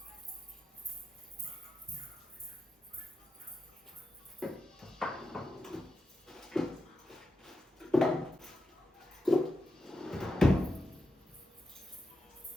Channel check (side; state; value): both; normal; correlation 0.88